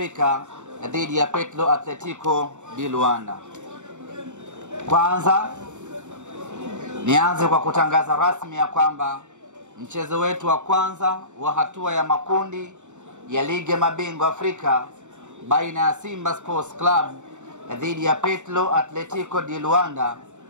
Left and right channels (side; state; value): left; late; 0.84 ms